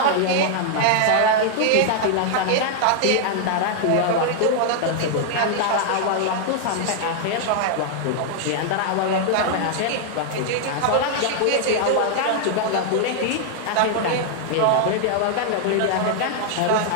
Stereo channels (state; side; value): different; both; correlation 0.00